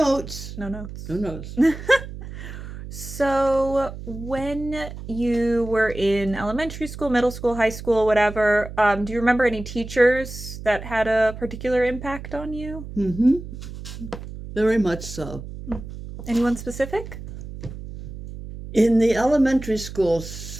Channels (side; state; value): right; noise; hum, 11 dB below the sound